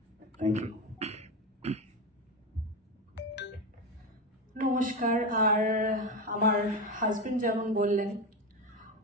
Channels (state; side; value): normal; both; correlation 0.17